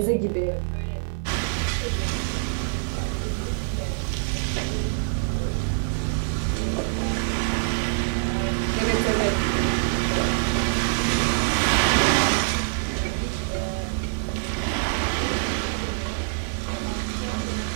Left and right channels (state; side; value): silent; left; 59 dB below the other